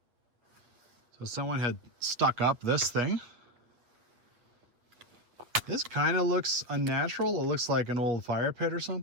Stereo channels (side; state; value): left; late; 8.1 ms